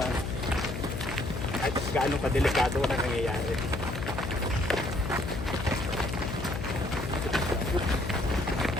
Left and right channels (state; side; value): noise; left; hum, 5 dB below the sound